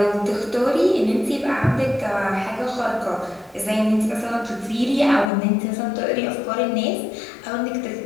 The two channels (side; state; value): right; drops out; at 5.3 s